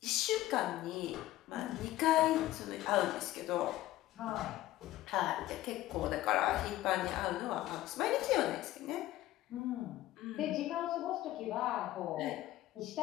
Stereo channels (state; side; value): quieter; right; 15.4 dB